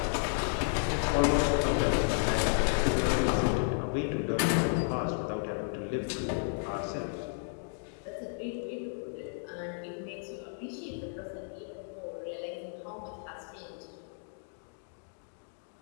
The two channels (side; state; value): right; silent; digital silence